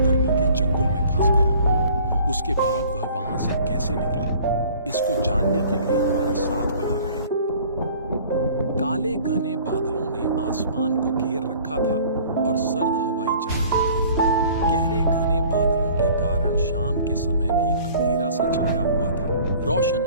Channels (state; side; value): inverted; both; correlation -0.51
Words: के चंगुल में फंस गया। उसके बाद वह वहां से कैसे निकला, इसको जानने के लिए हमारे साथ बने रहे। काले घने बादलों ने आसमान को घेर रखा था और सर्द हवाएं चल रही थी। गहरे घने बादलों के कारण शाम के समय भी अंधेरा सा छाया हुआ था। रोशन